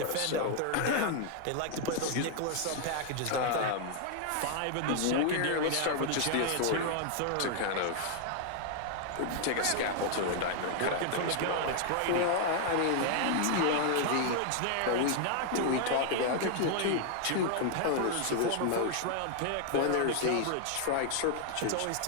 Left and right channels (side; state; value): both; different; correlation 0.00